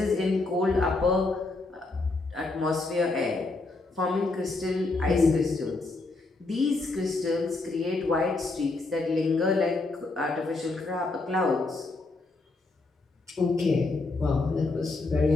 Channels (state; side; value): quieter; right; 3.4 dB